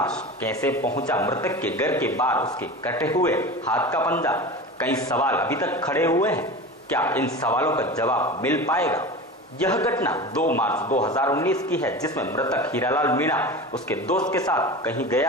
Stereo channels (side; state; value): both; normal; correlation 0.31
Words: कैसे पहुंचा मृतक के घर के बाहर उसके कटे हुए हाथ का पंजा? कई सवाल अभी तक खड़े हुए हैं। क्या इन सवालों का जवाब मिल पाएगा? यह घटना 2 मार्च 2019 की है, जिसमें मृतक हीरालाल मीणा उसके दोस्त के साथ कहीं